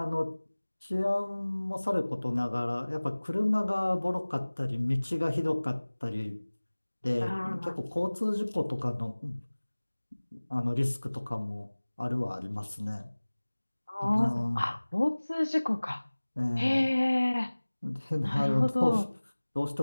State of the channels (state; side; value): inverted; both; correlation -1.00